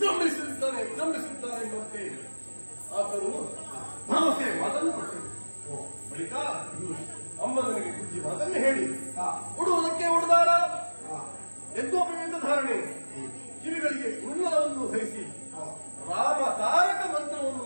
ಎಂಬಂತೆ ಆತನು ಭರವಸೆ ಮಾತನ್ನು ಕೊಟ್ಟರು. ಬಳಿಕ ಅಮ್ಮ ನನಗೆ ಬುದ್ಧಿ ಮಾತನ್ನು ಹೇಳಿ ಉಡುವುದಕ್ಕೆ ಉಡುದಾರ ಯಜ್ಞೋಪವಿಂದ ಧಾರಣೆ ಕಿವಿಗಳಿಗೆ ಕುಂಡಲವನ್ನು ಧರಿಸಿ ರಾಮ ತಾರಕ ಮಂತ್ರವನ್ನು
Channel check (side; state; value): both; inverted; correlation -1.00